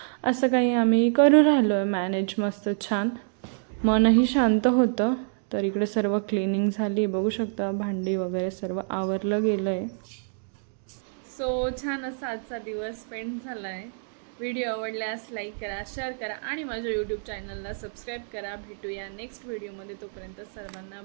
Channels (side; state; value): left; silent; digital silence